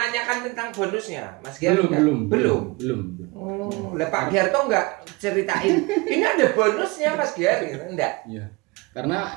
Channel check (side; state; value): left; quieter; 24.6 dB